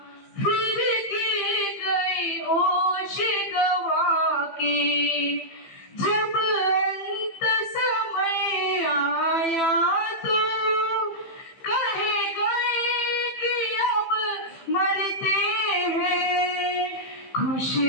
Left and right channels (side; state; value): right; late; 15 ms